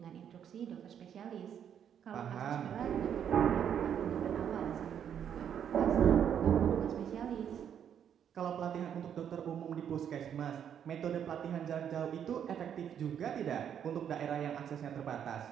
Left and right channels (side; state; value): left; quieter; 8.8 dB